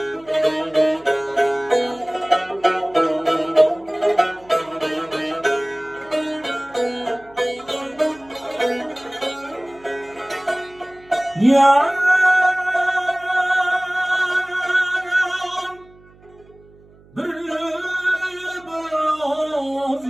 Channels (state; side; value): noise; right; hum, 27 dB below the sound